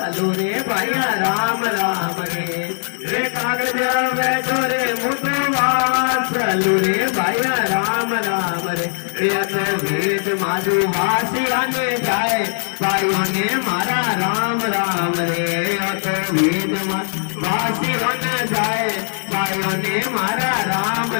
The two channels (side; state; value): right; silent; 65 dB below the other